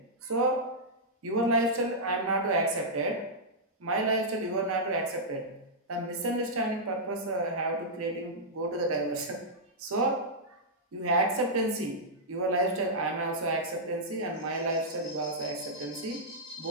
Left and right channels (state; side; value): normal; both; correlation -0.10